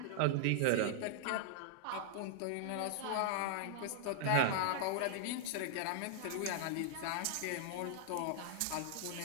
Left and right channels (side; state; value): both; different; correlation -0.01